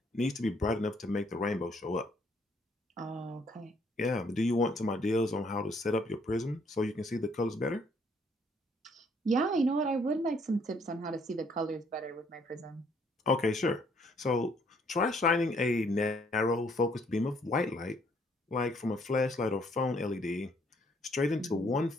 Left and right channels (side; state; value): both; normal; correlation 0.66